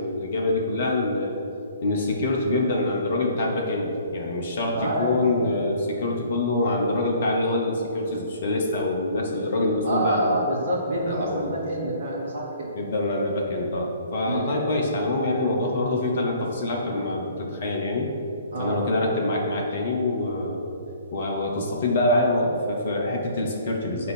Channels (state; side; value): inverted; both; correlation -0.55